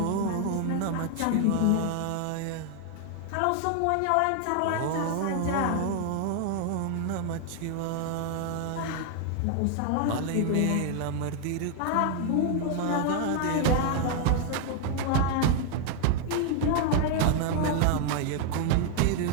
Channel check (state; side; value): different; both; correlation 0.00